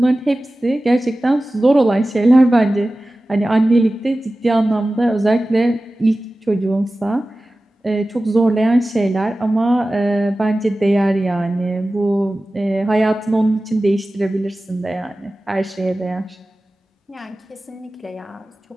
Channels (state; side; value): normal; both; correlation 0.96